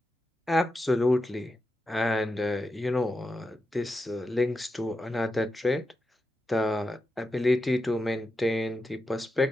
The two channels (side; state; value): both; normal; correlation 0.89